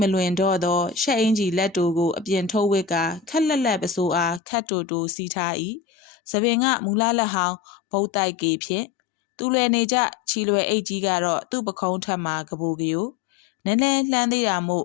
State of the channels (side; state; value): right; drops out; at 4.4 s